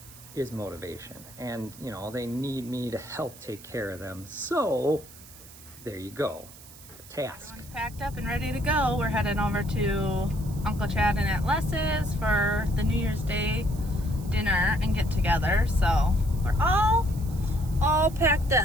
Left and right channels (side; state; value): right; noise; hiss, 19 dB below the sound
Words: is motivation. And, they need me to help take care of them. So, there you go. The task. Everyone's packed up and ready to go. We're heading over to Uncle Chad and Aunt Les's for the New Year's Day dinner and get together. So, we're all packed